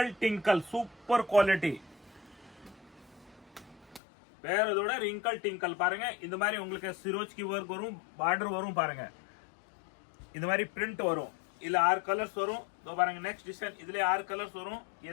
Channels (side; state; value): right; drops out; at 4.0 s